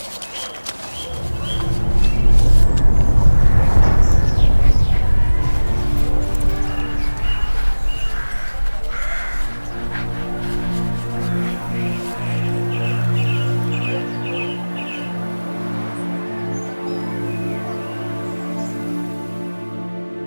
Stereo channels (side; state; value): both; inverted; correlation -1.00